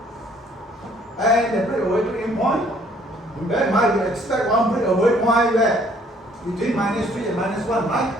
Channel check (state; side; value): normal; both; correlation 0.61